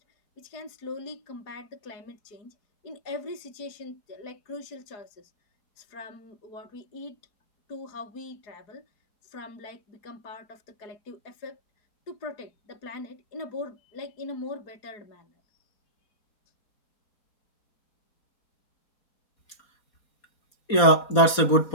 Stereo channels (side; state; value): right; late; 4.2 ms